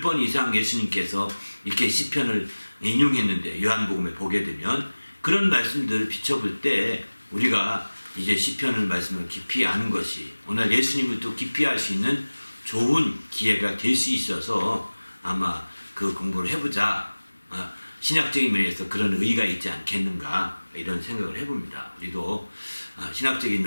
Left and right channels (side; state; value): both; inverted; correlation -1.00